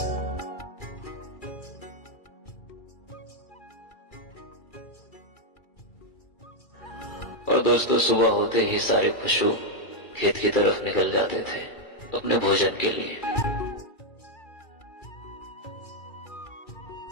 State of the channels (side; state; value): right; late; 2.3 ms